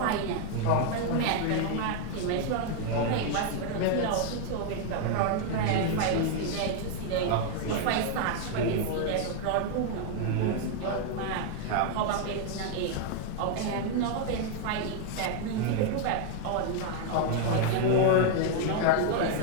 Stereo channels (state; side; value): different; both; correlation 0.00